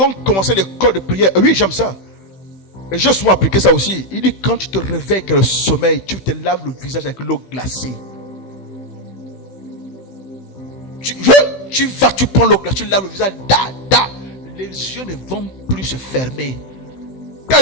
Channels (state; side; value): late; right; 16 ms